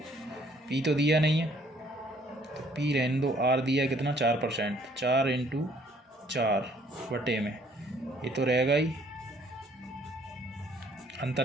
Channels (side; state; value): both; normal; correlation 0.62